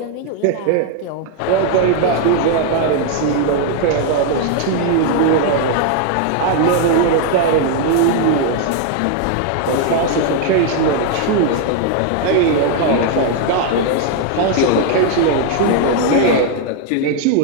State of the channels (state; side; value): different; both; correlation 0.00